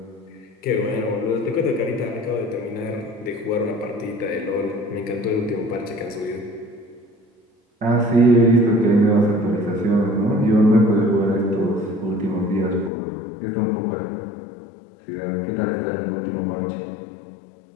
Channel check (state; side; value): drops out; right; at 12.9 s